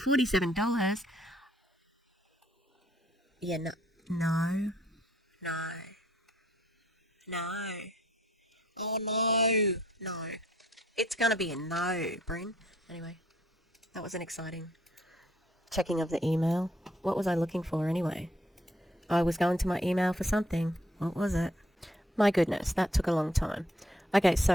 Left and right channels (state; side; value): normal; both; correlation 0.66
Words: Yeah, no. No. Oh, no. It's gonna be a no, Bryn. Anyway, that was an exciting checking of the email. What was I looking for anyway? I was going to my email for something. What was it? My goodness, that took a long time. Okay,